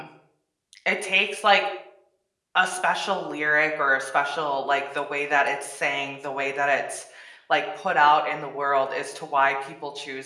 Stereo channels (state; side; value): identical; both; correlation 1.00